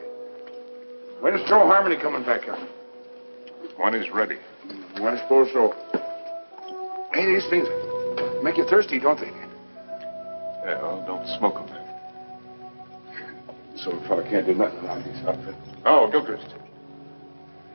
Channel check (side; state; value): both; inverted; correlation -1.00